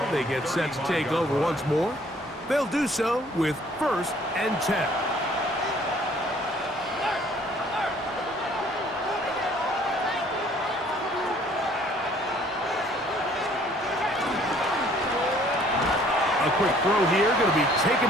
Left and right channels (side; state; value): both; normal; correlation 0.58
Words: They get set to take over once more. They'll do so with 1st and 10. A quick throw here, going to be